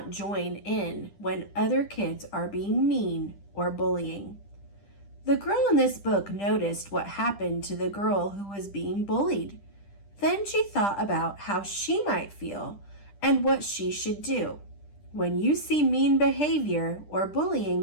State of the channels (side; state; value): right; late; 10 ms